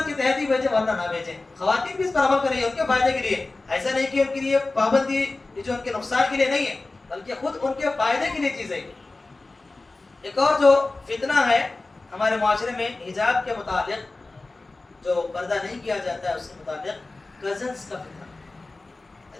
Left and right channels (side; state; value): right; quieter; 3.3 dB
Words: کے تحت ہی بھیجیں ورنہ نہ بھیجیں۔ خواتین بھی اس پر عمل کر رہی ہیں ان کے فائدے کے لیے، ایسا نہیں کہ ان کے لیے پابندی یہ جو ان کے نقصان کے لیے نہیں ہے، بلکہ خود ان کے فائدے کے لیے چیز ہے۔ ایک اور جو فتنہ ہے ہمارے معاشرے میں حجاب کے متعلق، جو پردہ نہیں کیا جاتا ہے اس کے متعلق، کزنس کا